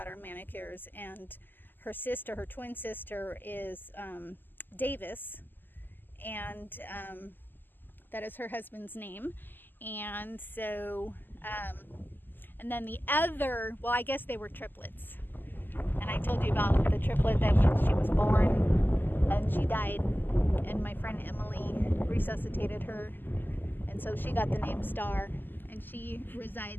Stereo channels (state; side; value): late; right; 0.091 ms